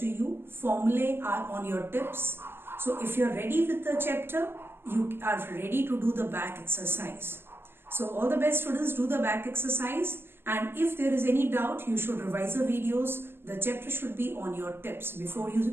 you. Formulae are on your tips. So if you're ready with the chapter, you are ready to do the back exercise. So all the best students, do the back exercise, and if there is any doubt, you should revise the videos. The chapter should be on your tips before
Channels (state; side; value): late; left; 0.11 ms